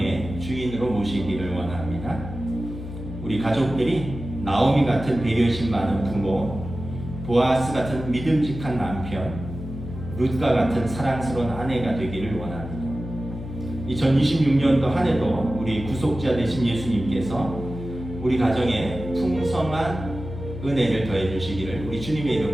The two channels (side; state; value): left; noise; hum, 10 dB below the sound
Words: 주인으로 모시기를 원합니다. 우리 가족들이 나오미 같은 배려심 많은 부모, 보아스 같은 믿음직한 남편, 룻과 같은 사랑스러운 아내가 되기를 원합니다. 2026년도 한 해도 우리 구속자 되신 예수님께서 우리 가정에 풍성한 은혜를 더해 주시기를 우리 주님의